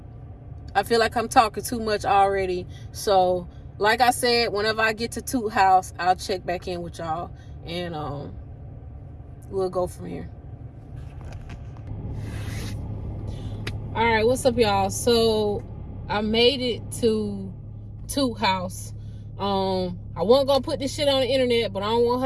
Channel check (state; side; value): identical; both; correlation 1.00